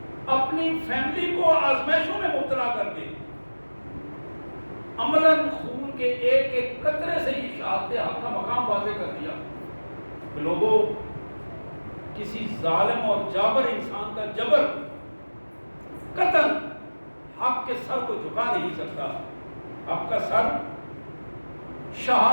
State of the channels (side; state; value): both; inverted; correlation -1.00